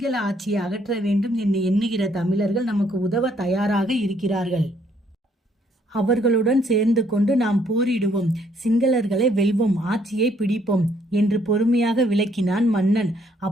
ஆட்சியை அகற்ற வேண்டும் என்று எண்ணுகிற தமிழர்கள் நமக்கு உதவ தயாராக இருக்கிறார்கள். அவர்களுடன் சேர்ந்து கொண்டு நாம் போரிடுவோம், சிங்களர்களை வெல்வோம், ஆட்சியை பிடிப்போம் என்று பொறுமையாக விளக்கினான் மன்னன்.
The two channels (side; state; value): both; normal; correlation 0.67